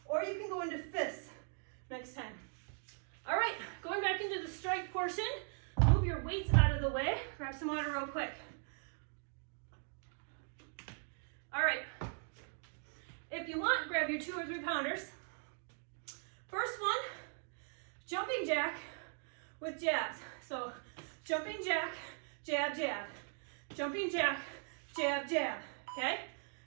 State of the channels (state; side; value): silent; left; 51 dB below the other